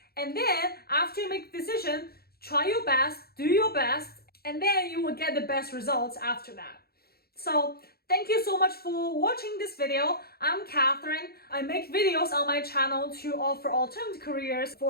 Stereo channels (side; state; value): right; late; 0.45 ms